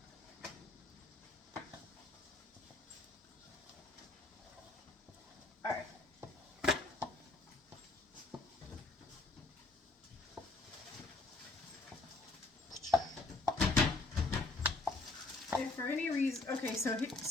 All right. If for any reason, okay, so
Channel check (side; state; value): right; quieter; 3.2 dB